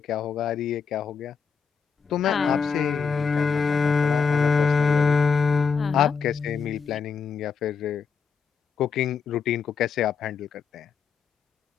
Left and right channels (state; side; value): quieter; right; 5.9 dB